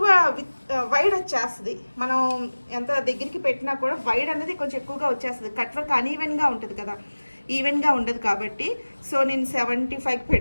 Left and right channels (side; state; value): both; inverted; correlation -1.00